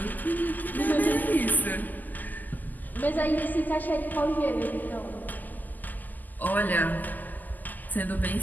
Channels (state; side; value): late; right; 0.084 ms